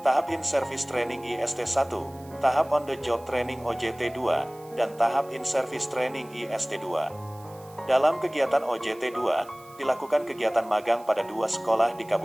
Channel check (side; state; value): right; noise; hiss, 25 dB below the sound